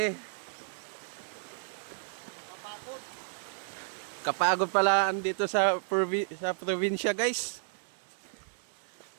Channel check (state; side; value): silent; left; 56 dB below the other